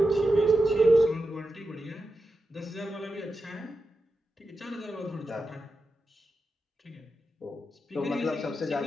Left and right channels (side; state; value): both; normal; correlation 0.90